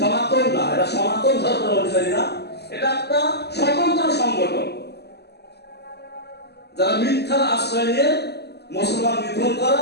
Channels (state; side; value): late; right; 0.48 ms